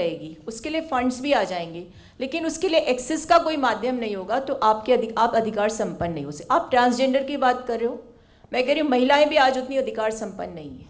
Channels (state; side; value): identical; both; correlation 1.00